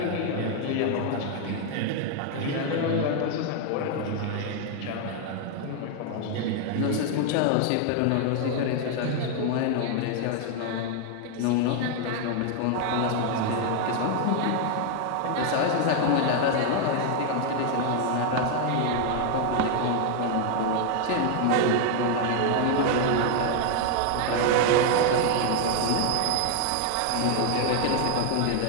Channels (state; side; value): different; both; correlation 0.00